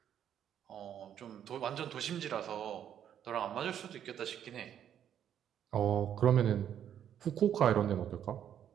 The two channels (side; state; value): left; quieter; 9.7 dB